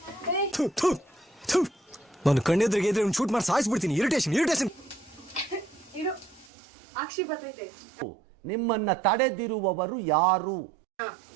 ನಾನು ಕಣ್ಣೆದ್ರಿಗೆ ಇದ್ರೆ ಶೂಟ್ ಮಾಡಿ ಸಾಯಿಸ್ಬಿಡ್ತೀನಿ. ಇರಿಟೇಷನ್ ಇರು, ಅಕ್ಷಿ ಬರ್ತೈತೆ. ನಿಮ್ಮನ್ನ ತಡೆದಿರುವವರು ಯಾರು?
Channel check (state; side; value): drops out; left; at 6.5 s